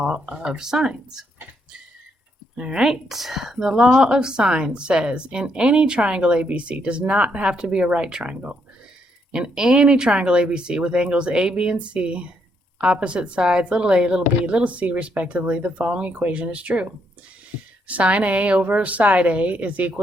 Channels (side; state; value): both; normal; correlation 0.75